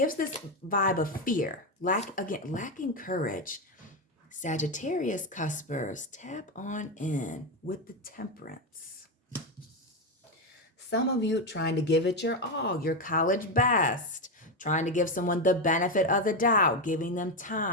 this vibe of fear, lacking courage. Sagittarius cuspers, tap on in with the Temperance. Some of you trying to give it your all, your college best, trying to give someone the benefit of the doubt, giving them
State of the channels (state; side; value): normal; both; correlation 0.10